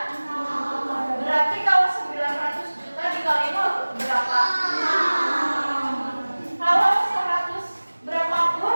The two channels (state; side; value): inverted; both; correlation -1.00